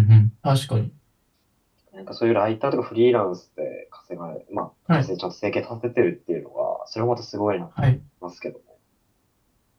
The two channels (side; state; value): both; identical; correlation 1.00